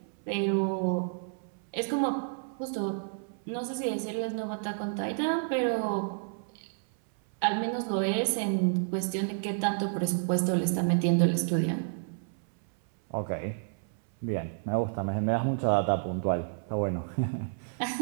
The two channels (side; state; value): left; silent; 58 dB below the other